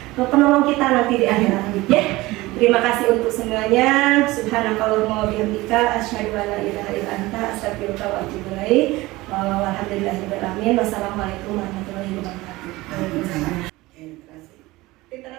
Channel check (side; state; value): left; quieter; 19.9 dB